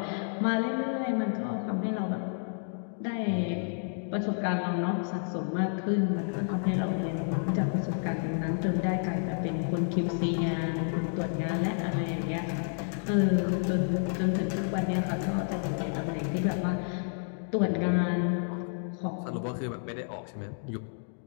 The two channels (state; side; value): silent; right; digital silence